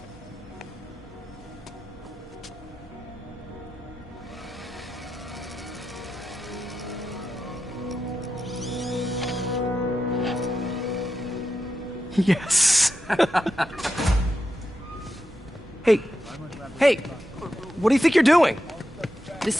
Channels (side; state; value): both; normal; correlation 0.88